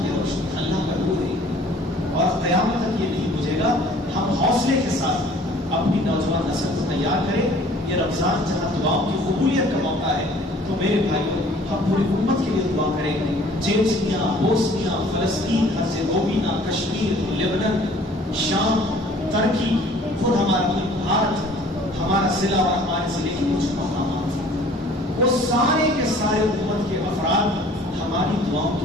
روشنی، اللہ کا نور ہے، اور قیامت تک یہ نہیں بجھے گا۔ ہم حوصلے کے ساتھ اپنی نوجوان نسل کو تیار کریں۔ یہ رمضان جہاں دعاؤں کی قبولیت کا موقع ہے، تو میرے بھائیوں، ہم پوری امت کے لیے دعا کریں۔ چیچنیا، بوسنیا، فلسطین، ہرزیگووینا، کشمیر، لیبنان، شام، ترکی، خود ہمارا ملک بھارت، ہمارا ضلع اور ہمارے ضلع کے کچھ مقامات، وہ سارے کے سارے امت کے افراد ہماری دعاؤں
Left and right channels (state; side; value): normal; both; correlation 0.52